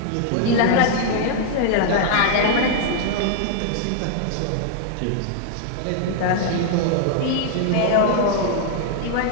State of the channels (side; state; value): both; different; correlation -0.01